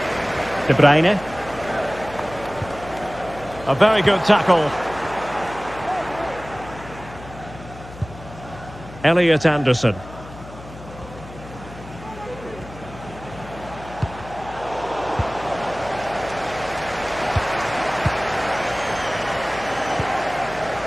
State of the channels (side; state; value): left; noise; hum, 16 dB below the sound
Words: De Bruyne. A very good tackle. Elliot Anderson.